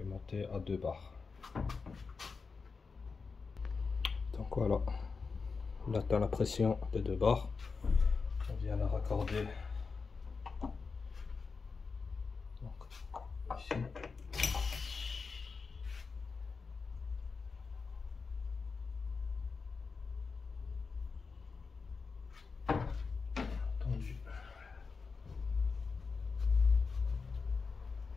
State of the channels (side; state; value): right; quieter; 4.8 dB